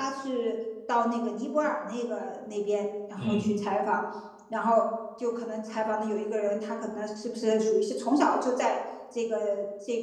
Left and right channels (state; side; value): identical; both; correlation 1.00